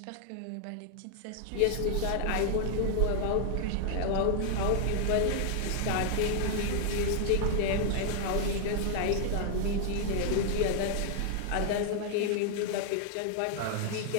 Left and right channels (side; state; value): both; different; correlation 0.00